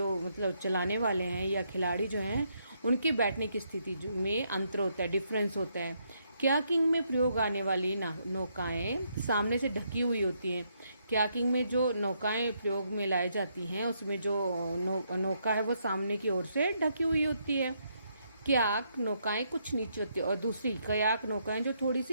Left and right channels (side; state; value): both; inverted; correlation -0.76